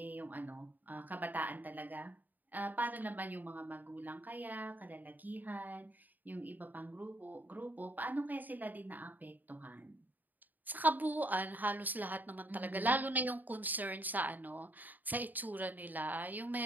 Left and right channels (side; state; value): left; late; 0.085 ms